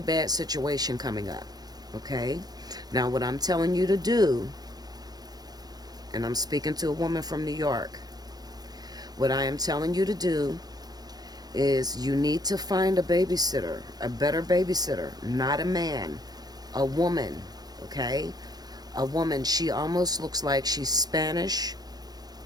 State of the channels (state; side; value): late; left; 0.19 ms